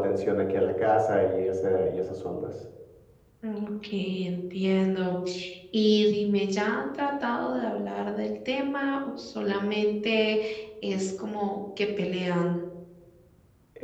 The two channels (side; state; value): both; identical; correlation 1.00